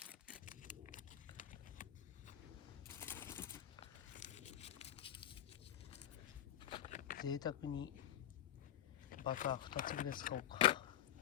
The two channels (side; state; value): right; quieter; 11.5 dB